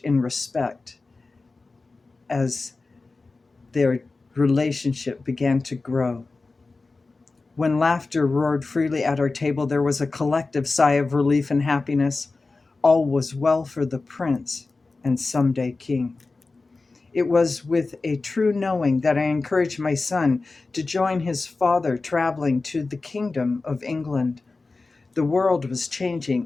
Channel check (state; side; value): quieter; right; 3.7 dB